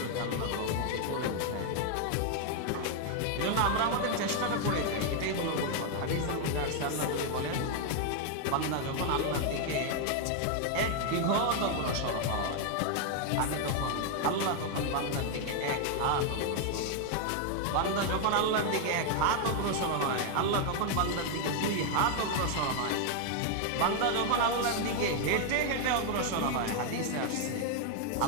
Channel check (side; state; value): both; different; correlation 0.00